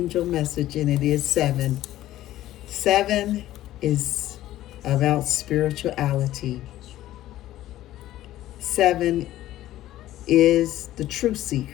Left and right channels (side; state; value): right; quieter; 14.2 dB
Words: message, and it is 7. 7 is about spirituality. 7 is the true